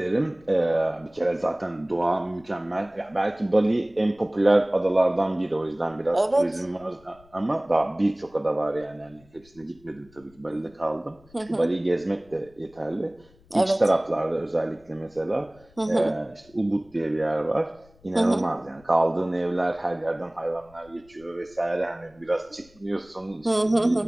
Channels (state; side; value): noise; left; rumble, 28 dB below the sound